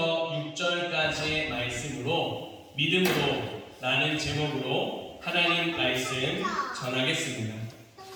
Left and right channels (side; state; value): both; identical; correlation 1.00